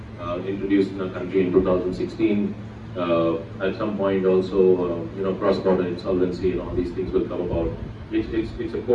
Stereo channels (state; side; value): identical; both; correlation 1.00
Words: introduced in our country in 2016. At some point also, cross-border insolvency and all these things will come about. It's a